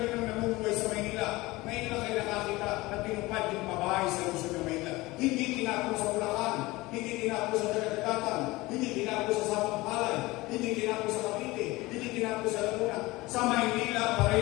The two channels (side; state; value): right; quieter; 20.7 dB